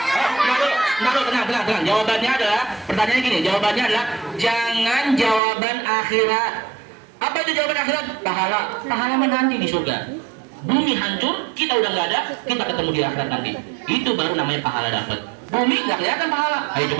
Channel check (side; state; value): left; drops out; at 5.4 s